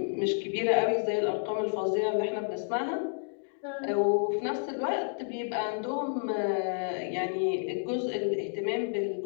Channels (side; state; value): right; silent; digital silence